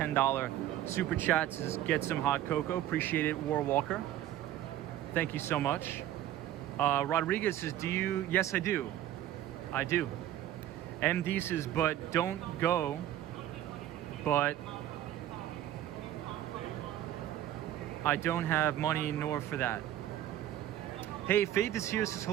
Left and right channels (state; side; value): quieter; left; 12.5 dB